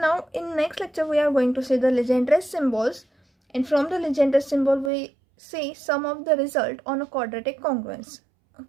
in next lecture we are going to see the Legendre symbols, and from the Legendre symbol we see some of the result on a quadratic congruence.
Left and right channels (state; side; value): drops out; left; at 4.9 s